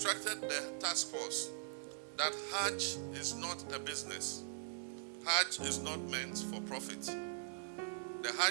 the task force that Hajj is not a business. Hajj is not meant for profit. the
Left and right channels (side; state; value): left; silent; digital silence